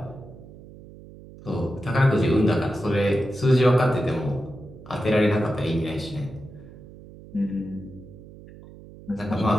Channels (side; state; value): right; noise; hum, 18 dB below the sound